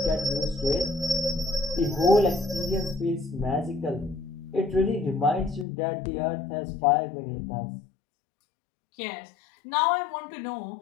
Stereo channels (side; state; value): right; drops out; at 5.7 s